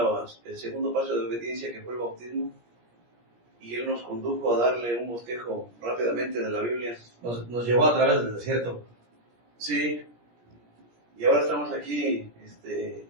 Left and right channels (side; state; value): left; late; 17 ms